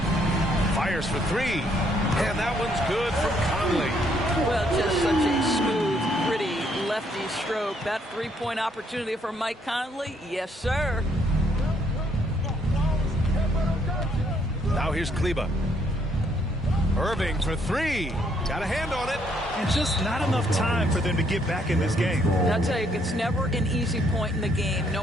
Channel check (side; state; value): both; normal; correlation 0.70